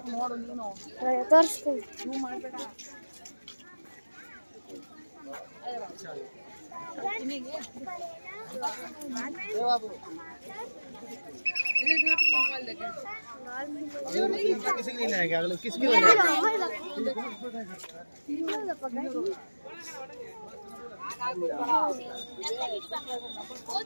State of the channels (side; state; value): both; inverted; correlation -1.00